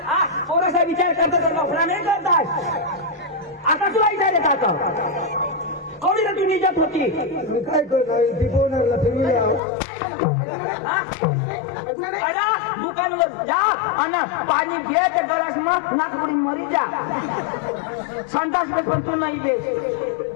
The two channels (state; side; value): drops out; right; at 9.6 s